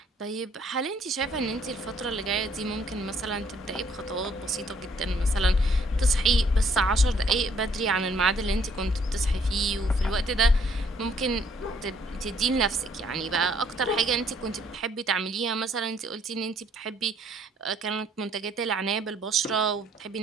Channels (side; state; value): both; normal; correlation 0.65